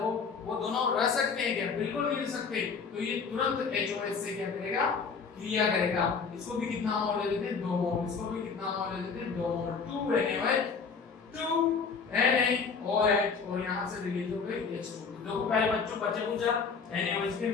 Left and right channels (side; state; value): right; quieter; 5.4 dB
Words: वो दोनों रह सकते हैं क्या, बिल्कुल नहीं रह सकते। तो ये तुरंत HOH से क्या करेगा, क्रिया करेगा। इसको भी कितना मोल ले लेते हैं, 2 मोल, इसको भी कितना मोल ले लेते हैं, 2 मोल, 2 NaOH, 2 NaOH, और यहाँ से रिलीज हो गई H2। देखो पहले बच्चों बच्चे पूछा NaOH